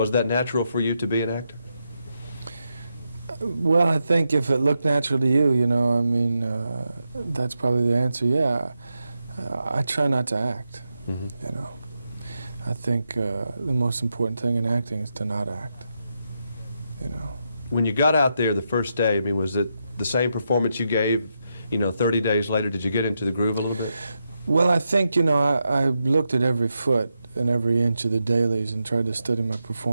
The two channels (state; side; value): inverted; both; correlation -0.85